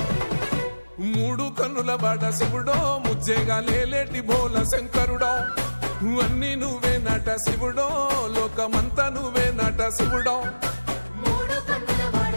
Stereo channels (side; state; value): both; inverted; correlation -1.00